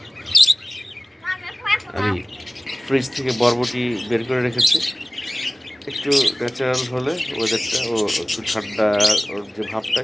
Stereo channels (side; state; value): both; normal; correlation 0.96